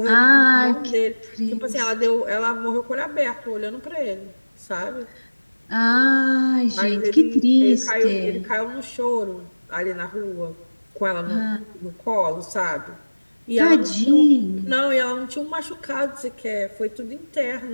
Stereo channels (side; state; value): both; inverted; correlation -1.00